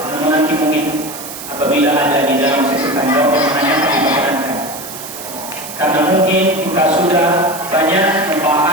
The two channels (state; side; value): noise; right; hiss, 12 dB below the sound